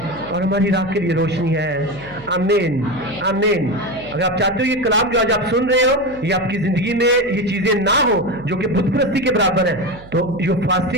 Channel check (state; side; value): noise; right; hum, 21 dB below the sound